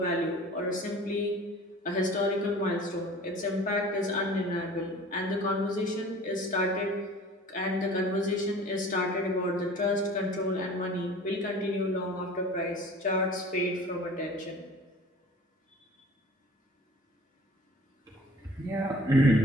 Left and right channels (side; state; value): both; normal; correlation 0.45